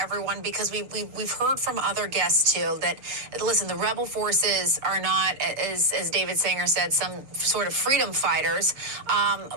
because we've heard from other guests too that, listen, the rebel forces are not, as David Sanger said, some sort of freedom fighters,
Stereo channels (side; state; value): left; late; 6.6 ms